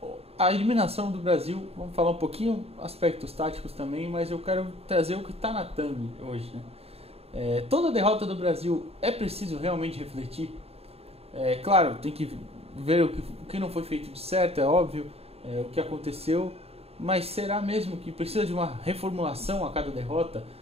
a eliminação do Brasil. Vamos falar um pouquinho aspectos táticos também, mas eu quero trazer o que está na thumb hoje, né? Toda derrota do Brasil é preciso realmente refletir. Claro, tem que ver o que não foi feito de certo, é óbvio, o que aconteceu. Mas será mesmo que precisa de uma reformulação a cada derrota?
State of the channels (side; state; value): left; late; 0.29 ms